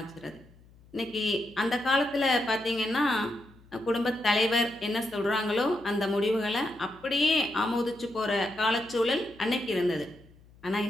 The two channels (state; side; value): noise; left; hum, 26 dB below the sound